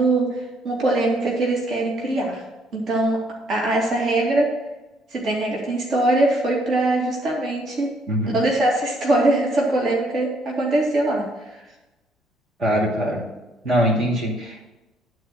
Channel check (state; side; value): normal; both; correlation 0.68